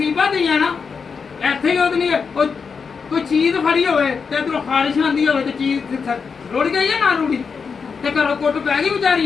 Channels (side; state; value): right; quieter; 5.6 dB